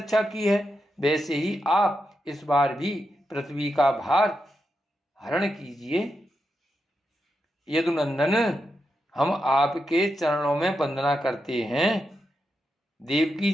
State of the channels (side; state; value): both; normal; correlation 0.86